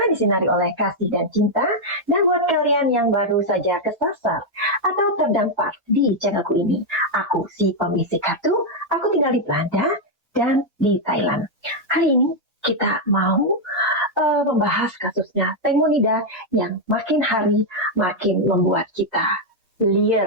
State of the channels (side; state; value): both; normal; correlation 0.00